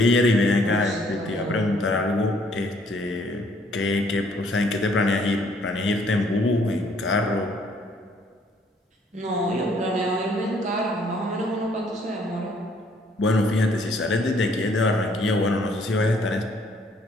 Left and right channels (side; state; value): both; normal; correlation 0.64